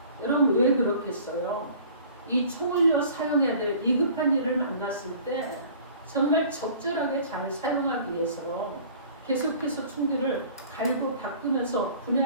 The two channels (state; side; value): inverted; both; correlation -0.48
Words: 여러분 왜 그렇겠어요? 이 총을요 사용해야 될 위급한 일을 만났을 때 정말 적절하게 잘 사용하기 위해서 계속해서 총기를 갈고 닦으면서